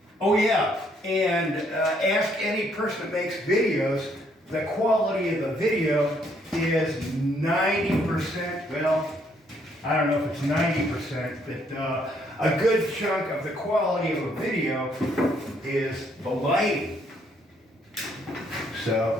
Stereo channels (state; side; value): normal; both; correlation 0.69